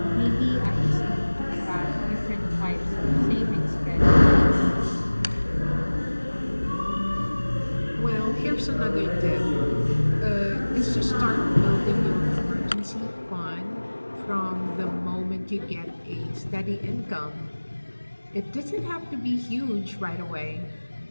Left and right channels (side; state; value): both; inverted; correlation -1.00